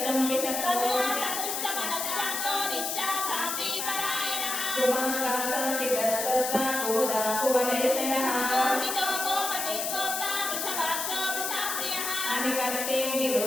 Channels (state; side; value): noise; left; hiss, 2 dB below the sound